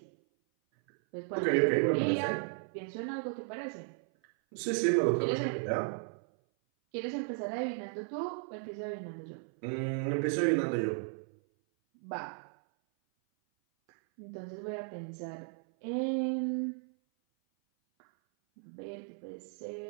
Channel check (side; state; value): left; silent; 54 dB below the other